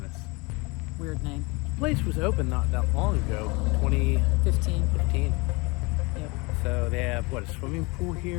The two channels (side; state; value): right; quieter; 26.7 dB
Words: Weird name. The place was open not that long ago, 2015. 15. Yep. So they have, what, a swimming pool